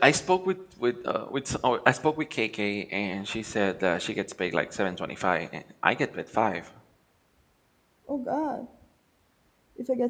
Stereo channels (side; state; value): both; identical; correlation 1.00